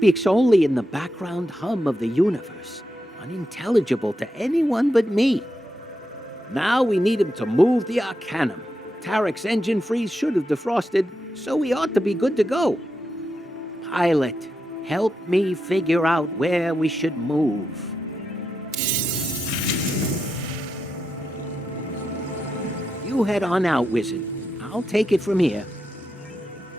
only in the background hum of the universe, unintelligible to anyone but me. Now we need him to move the Arcanium. Tarek's engine freeze should have defrosted, so we ought to be good to go. Pilot, help me figure out where we should move. You head on out, Wizard. I'll take it from here.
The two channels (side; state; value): both; normal; correlation 0.86